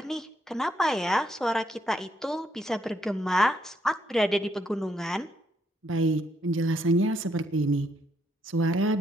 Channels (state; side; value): normal; both; correlation 0.74